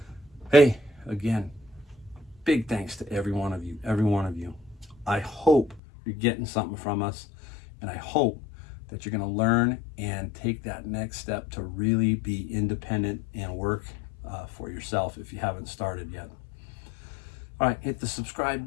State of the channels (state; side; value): drops out; right; at 5.8 s